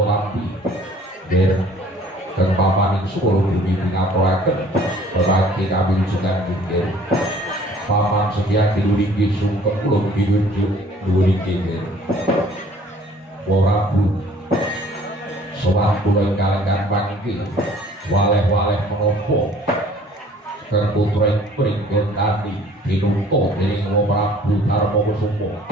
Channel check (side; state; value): both; normal; correlation 0.54